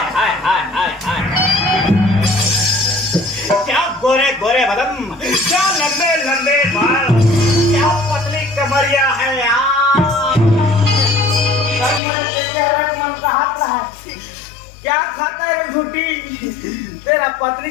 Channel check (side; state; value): right; drops out; at 12.0 s